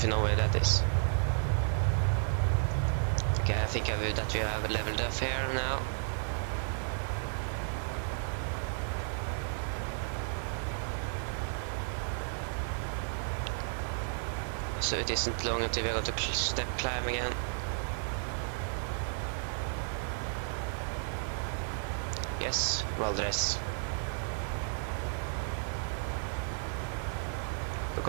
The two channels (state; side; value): silent; left; digital silence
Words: you know where that is. Okay, I think that we have leveled up here now. So it isn't long until we are going to step climb again. Yes, Valdres.